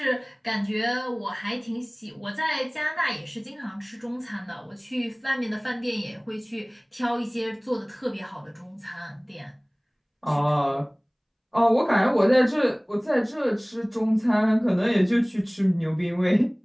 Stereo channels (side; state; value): both; identical; correlation 1.00